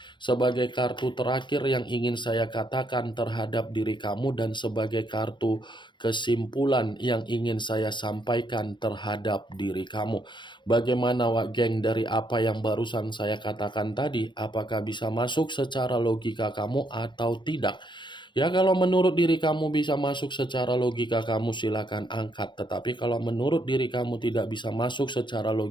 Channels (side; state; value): right; late; 0.23 ms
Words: sebagai kartu terakhir yang ingin saya katakan terhadap diri kamu dan sebagai kartu kesimpulan yang ingin saya sampaikan terhadap diri kamu. Bagaimana, Wak Geng, dari apa yang barusan saya katakan tadi? Apakah bisa masuk secara logika kamu atau tidak? Ya kalau menurut diri kamu bisa masuk secara logika kamu silakan angkat, tetapi kalau menurut diri kamu tidak bisa masuk secara